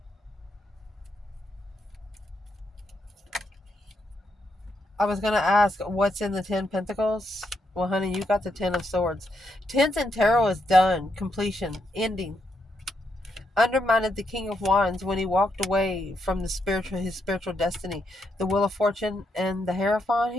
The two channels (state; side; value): normal; both; correlation 0.80